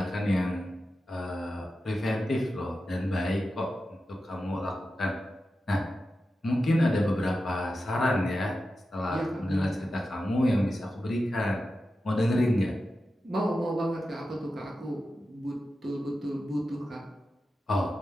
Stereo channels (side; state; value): both; normal; correlation 0.91